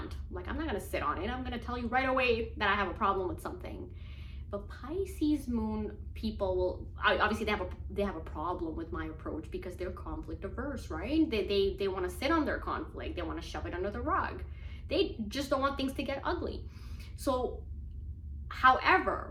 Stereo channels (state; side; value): identical; both; correlation 1.00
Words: Like, I'm not gonna sit on it. I'm gonna tell you right away that I have a problem with something. But Pisces moon people will obviously they have a problem with my approach because they're conflict averse, right? They want to sit on their conflict. They want to shove it under the rug. They just don't want things to get ugly. So,